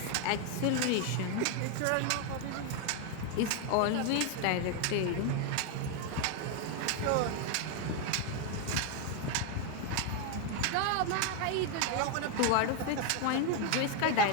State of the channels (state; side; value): different; both; correlation 0.01